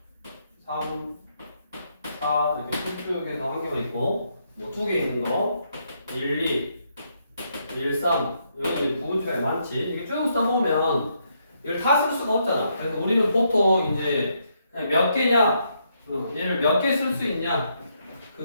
3, 4 이렇게 쭉 해서 한 개만 있고, 뭐 두 개 있는 거, 1, 2, 1, 3 여기 부분집합이 많지. 이렇게 쭉 써보면 이걸 다 쓸 수가 없잖아. 그래서 우리는 보통 이제 그냥 몇 개냐, 얘를 몇 개 쓸 수 있냐,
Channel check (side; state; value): both; inverted; correlation -0.76